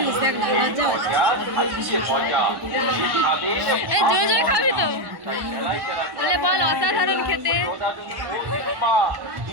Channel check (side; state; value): left; late; 1.1 ms